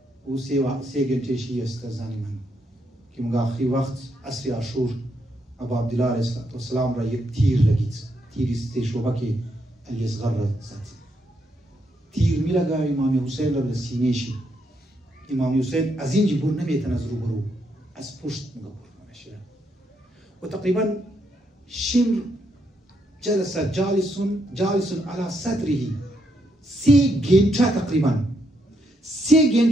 او 3 گنجه شیر است زنی من که مگه آخری وقت عصر عاشور ابا عبدالله علیه السلام را یک تیر لگید، تیری ستشوبه که علی اصغر را زد. تیر می لگا امام حسین را به سینه شی. امام حسین از اینجا بر نمیتن از روبرو، از پشت مگه بر نمیشه. و تقریبا شمر جلس جالس على صدره 3 گنجه تقریبا 3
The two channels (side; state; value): both; normal; correlation 0.77